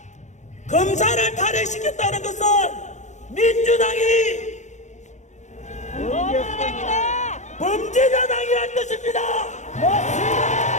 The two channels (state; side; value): late; right; 0.34 ms